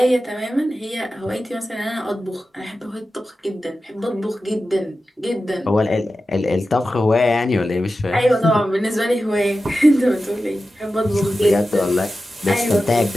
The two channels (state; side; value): normal; both; correlation 0.93